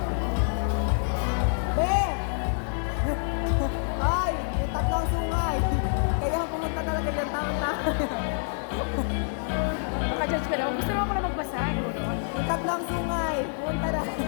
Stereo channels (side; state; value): right; silent; 59 dB below the other